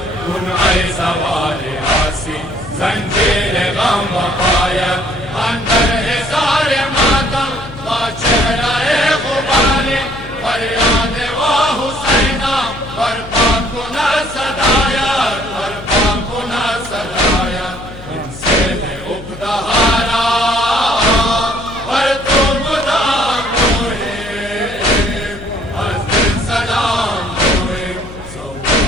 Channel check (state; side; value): noise; left; hum, 15 dB below the sound